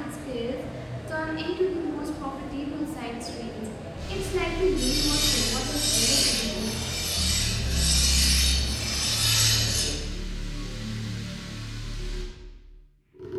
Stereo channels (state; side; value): identical; both; correlation 1.00